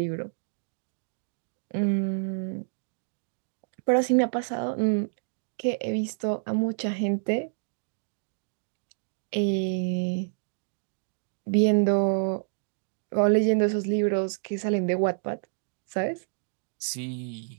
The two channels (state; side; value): silent; left; digital silence